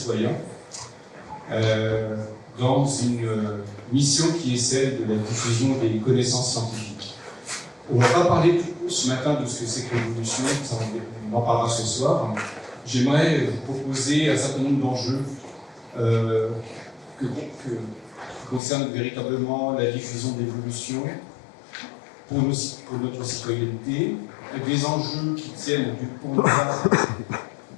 dans une mission qui est celle de la diffusion des connaissances scientifiques. On ne va pas parler ce matin de ce que c'est que l'évolution, on en parlera ce soir. J'aimerais vous proposer un certain nombre d'enjeux qui concernent véritablement la diffusion de l'évolution pour notre citoyenneté, des enjeux qui tiennent du point de vue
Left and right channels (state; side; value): drops out; right; at 18.6 s